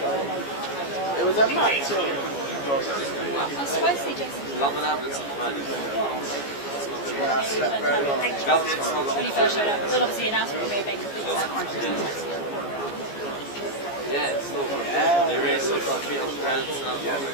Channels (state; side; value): late; right; 14 ms